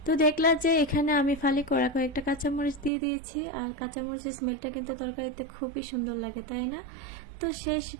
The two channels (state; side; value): drops out; left; at 2.9 s